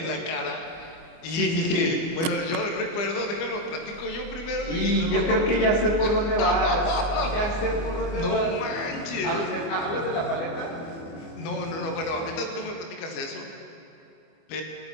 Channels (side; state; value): right; late; 25 ms